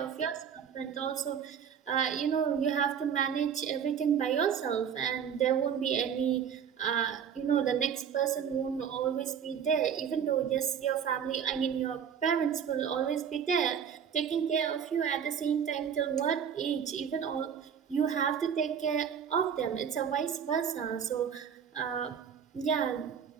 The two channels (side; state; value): left; quieter; 7.8 dB